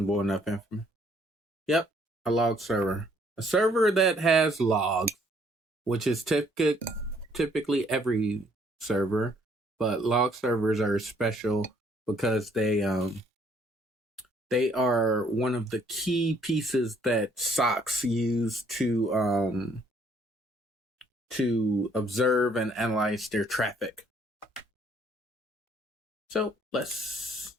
enough information. Yep, a log server. A server that has logs, which is typically every server, but log servers are special because they are one of the key pieces that SOCs use to observe and analyze their traffic. So let's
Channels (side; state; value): both; normal; correlation 0.64